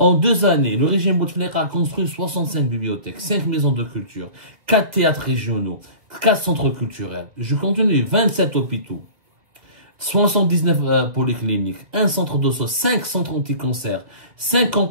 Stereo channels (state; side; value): late; left; 2.1 ms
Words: 2 années, le régime Bouteflika a construit 65 bibliothèques, 5 maisons de culture, 4 théâtres régionaux, 4 centres culturels. Je continue, 27 hôpitaux, 79 polycliniques, 1 centre d'osso, 5 centres anti-cancer, 5